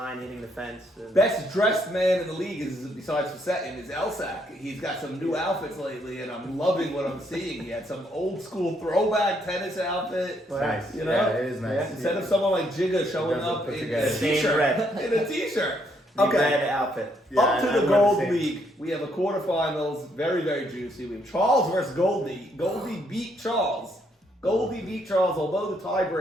hitting the fence. and- Best dressed man in the league is, besides Fasettin, is Elsack. He's got some new outfits lately, and I'm loving what I'm seeing. He had some old school throwback tennis outfit. Nice. You know? Yeah, it is nice. Yeah. instead of someone like Jigga showing Doesn't up put in together. a Same t-shirt. red. In a t-shirt. The Okay. red outfit. Yeah, Up to I the wear Gold same. League, we have a quarterfinals, very, very juicy. We have Charles versus Goldie. Goldie beat Charles. Goldie beat Charles, although the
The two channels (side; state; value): both; normal; correlation 0.72